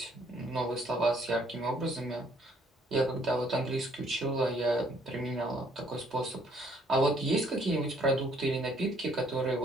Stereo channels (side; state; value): both; normal; correlation 0.64